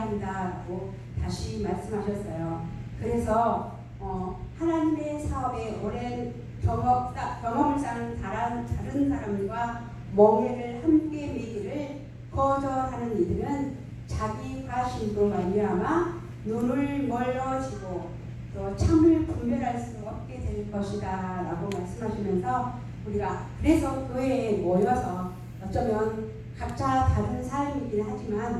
한다라고 다시 말씀하셨어요. 그래서 하나님의 사업에 오랜 경험을 쌓은 다른 사람과 멍해를 함께 매기를 거절하는 이들은 자기 과신으로 말미암아 눈을 멀어지고 또 참을 분별할 수 없게 될 것이다 라고 말씀하시면서 우리가 그래서 교회에 모여서 어쩌면 각자 다른 삶이긴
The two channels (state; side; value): identical; both; correlation 1.00